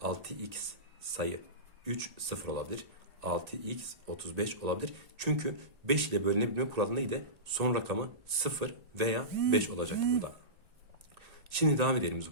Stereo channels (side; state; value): left; late; 1.8 ms